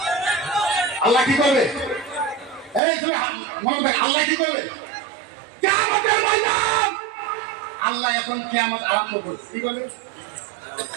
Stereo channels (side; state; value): left; drops out; at 2.8 s